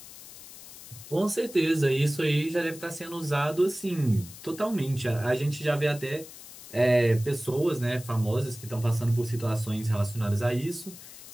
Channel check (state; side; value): noise; left; hiss, 16 dB below the sound